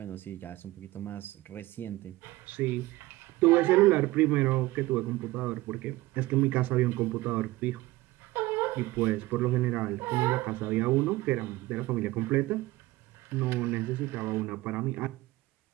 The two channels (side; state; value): left; quieter; 18.7 dB